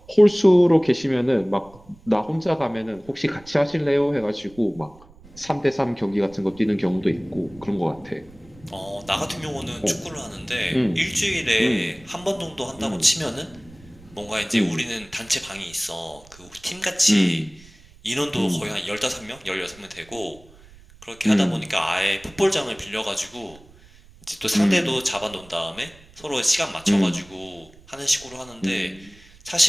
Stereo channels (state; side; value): noise; right; rumble, 24 dB below the sound